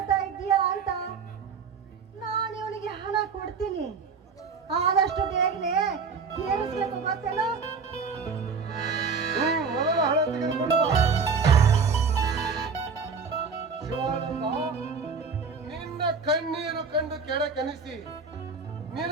ಇದ್ದೀಯಾ ಅಂತ. ನಾನು ಇವನಿಗೆ ಹಣ ಕೊಡ್ತೀನಿ, ಆದಷ್ಟು ಬೇಗನೆ ತೀರಿಸ್ಬೇಕು, ಗೊತ್ತೇನೋ? ಮೊದಲು ಹಣ ತೆಗೆದುಕೊಂಡು ಬಾ. ಶಿವಾನಂದ, ನಿನ್ನ ಕಣ್ಣೀರು ಕಂಡು ಕೆಳಕನಿಸಿ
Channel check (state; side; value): quieter; left; 5.3 dB